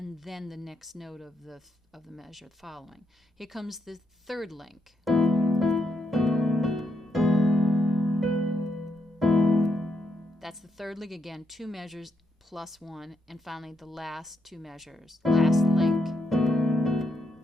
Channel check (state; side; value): normal; both; correlation 0.79